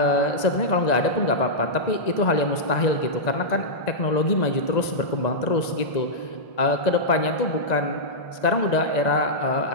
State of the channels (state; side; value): late; right; 1.9 ms